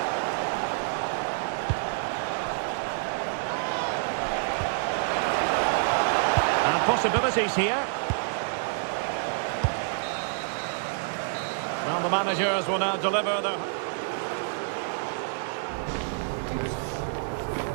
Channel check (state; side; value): silent; left; 59 dB below the other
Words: And possibilities here. Well, the managers will now deliver their...